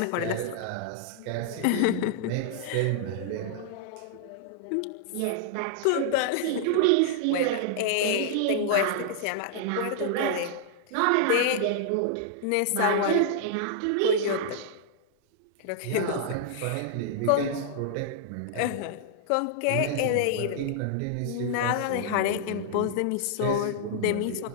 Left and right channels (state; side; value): different; both; correlation -0.01